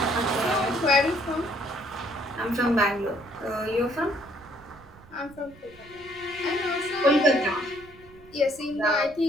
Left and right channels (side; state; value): right; noise; rumble, 23 dB below the sound